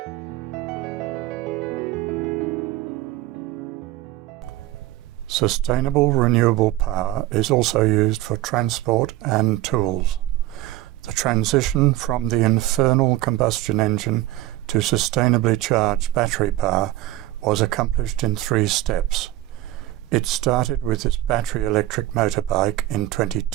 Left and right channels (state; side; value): quieter; left; 16.0 dB